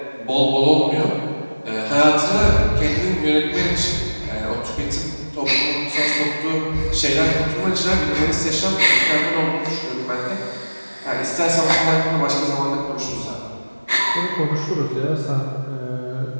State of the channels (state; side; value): inverted; both; correlation -1.00